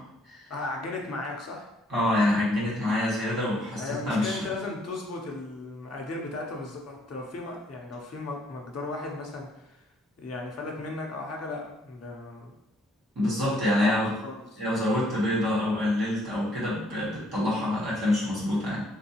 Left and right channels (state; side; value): normal; both; correlation 0.66